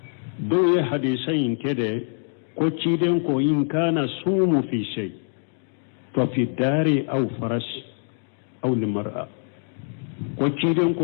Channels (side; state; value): right; silent; digital silence